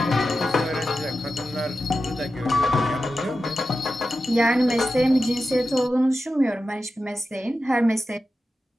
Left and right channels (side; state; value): both; normal; correlation 0.91